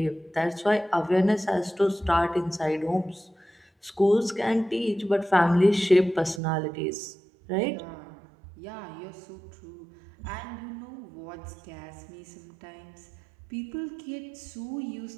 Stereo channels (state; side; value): drops out; left; at 6.4 s